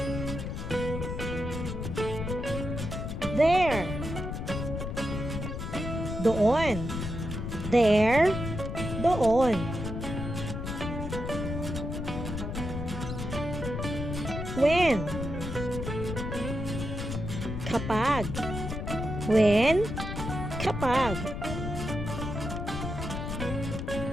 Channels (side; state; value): left; noise; rumble, 5 dB below the sound